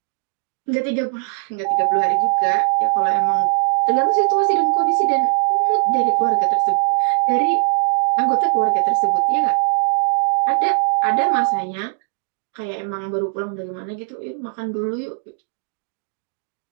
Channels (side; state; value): left; silent; digital silence